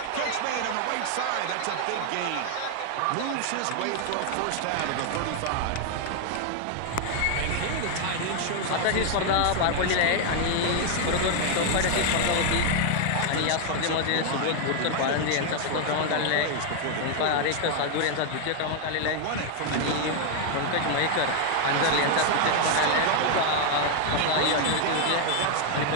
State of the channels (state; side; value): different; both; correlation 0.00